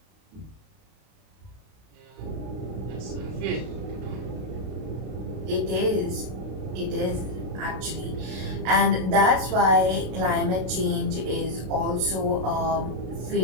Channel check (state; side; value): late; left; 32 ms